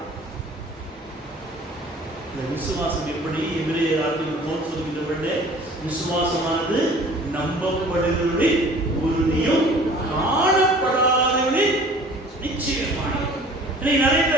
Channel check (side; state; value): both; normal; correlation 0.48